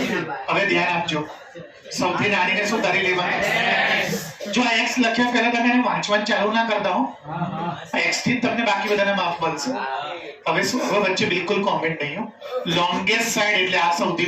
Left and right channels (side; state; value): both; identical; correlation 1.00